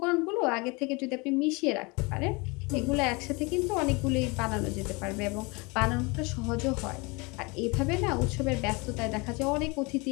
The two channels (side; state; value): right; quieter; 27.6 dB